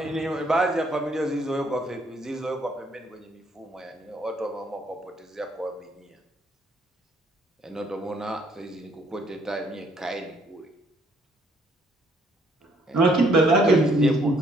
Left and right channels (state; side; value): normal; both; correlation 0.66